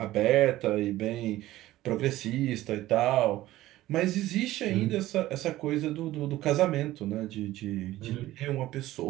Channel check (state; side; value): quieter; left; 15.7 dB